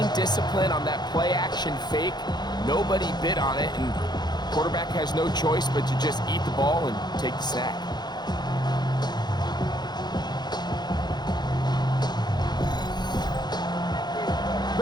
disciplined on that play-action fake. Nobody bid on it, and quarterback has no choice but to just eat the ball and take the sack.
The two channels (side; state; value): right; late; 0.21 ms